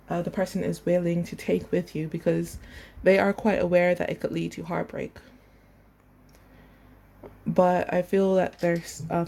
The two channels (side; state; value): both; identical; correlation 1.00